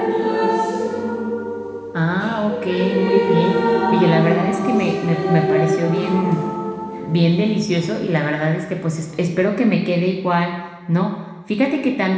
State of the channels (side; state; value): both; identical; correlation 1.00